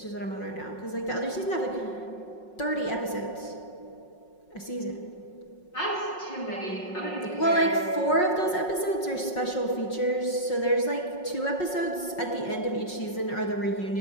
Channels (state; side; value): late; right; 5.5 ms